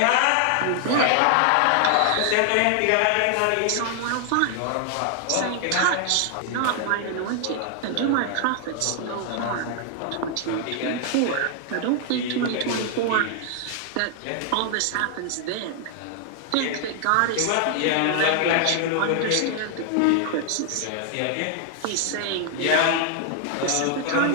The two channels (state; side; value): different; both; correlation 0.00